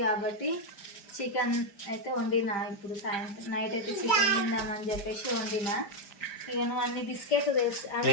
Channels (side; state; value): right; late; 5.0 ms